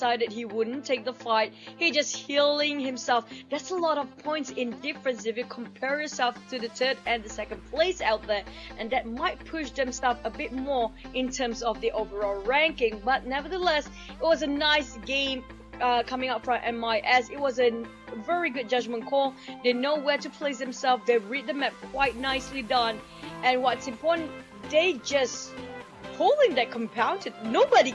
he wouldn't take the fight. He just healing himself. That's a lot of points in difference if you compare yourself to the 3rd and the 2nd place out there. And that might push themselves a bit more in terms of the overall ranking. But nevertheless, it was a nice game coming up from MIS. It was a very good judgment call. They know where to place themselves. They read the map quite nicely done. And what's important, they just holding their compound. Nobody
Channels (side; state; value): both; identical; correlation 1.00